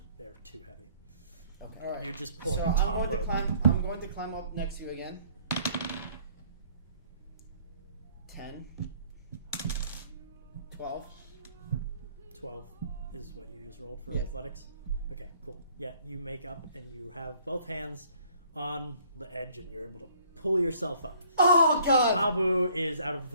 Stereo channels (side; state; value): both; inverted; correlation -0.60